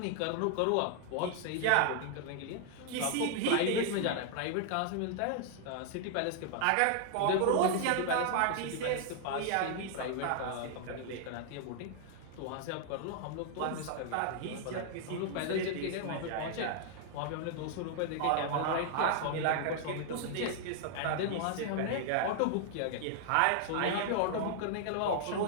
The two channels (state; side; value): different; both; correlation 0.00